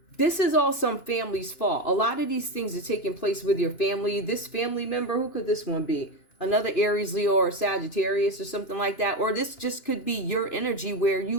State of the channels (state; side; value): late; right; 2.9 ms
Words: This is all some family's fault. A lot of these things are taking place with your family. This family member, who could this one be? Another Aries, Leo, or Sagittarius or something like that. Or this just could be your energy where